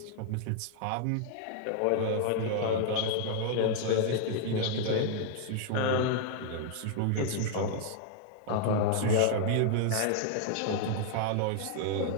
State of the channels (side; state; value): both; different; correlation 0.00